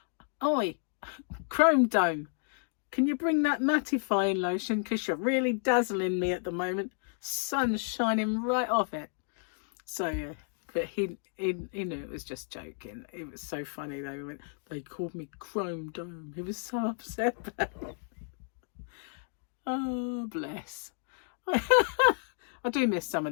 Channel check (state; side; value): silent; right; 57 dB below the other